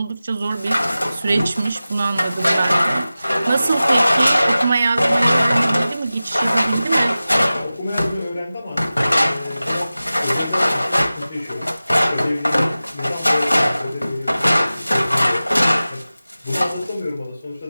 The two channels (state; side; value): inverted; both; correlation -0.96